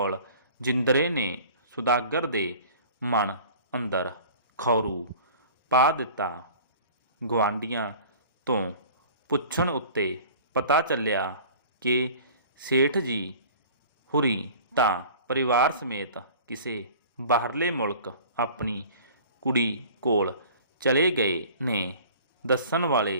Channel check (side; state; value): both; inverted; correlation -0.45